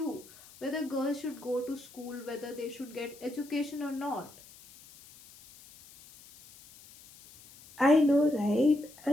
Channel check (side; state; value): left; noise; hiss, 22 dB below the sound